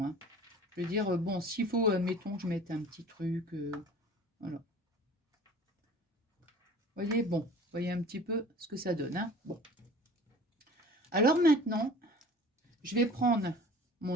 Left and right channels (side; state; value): both; normal; correlation 0.44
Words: Hein. Je veux dire, bon, s'il faut, mettons, je mette un petit truc. Voilà. Vous voyez, bon, vous voyez un petit peu ce que ça donne. Hein. Bon. Alors maintenant, je vais prendre